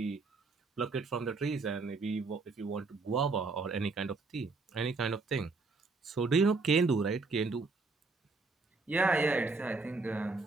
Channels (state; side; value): quieter; left; 3.8 dB